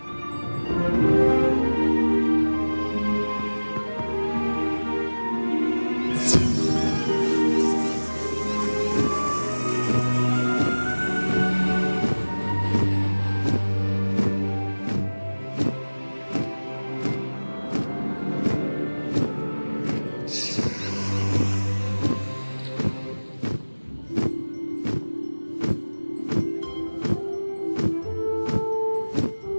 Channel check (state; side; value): inverted; both; correlation -1.00